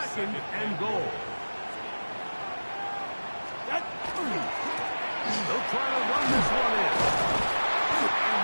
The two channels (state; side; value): inverted; both; correlation -1.00